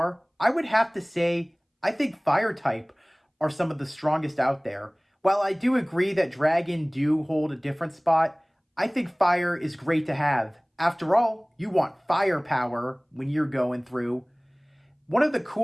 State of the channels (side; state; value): both; identical; correlation 1.00